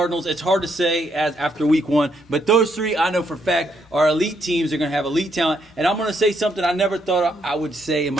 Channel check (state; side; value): normal; both; correlation 0.75